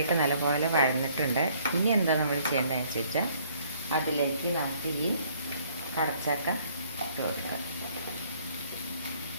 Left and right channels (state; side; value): inverted; both; correlation -0.62